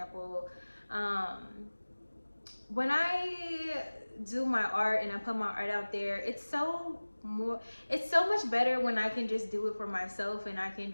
When I do my art and I put my art out there, it's so much better when I can just do it for myself, and I can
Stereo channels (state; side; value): inverted; both; correlation -1.00